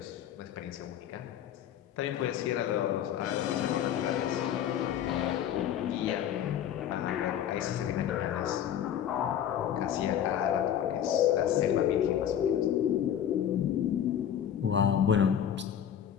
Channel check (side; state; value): right; quieter; 9.8 dB